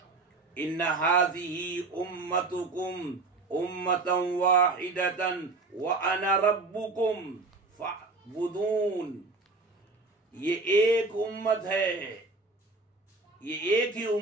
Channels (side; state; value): left; quieter; 3.6 dB